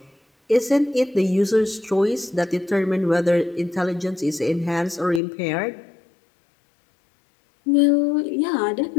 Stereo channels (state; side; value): drops out; right; at 5.2 s